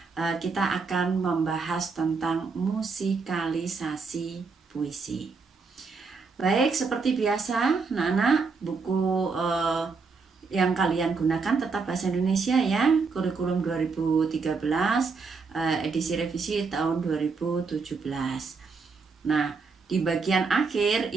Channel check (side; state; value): left; quieter; 4.7 dB